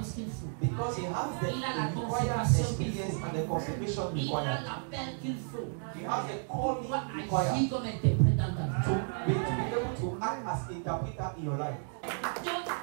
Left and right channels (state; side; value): silent; left; 56 dB below the other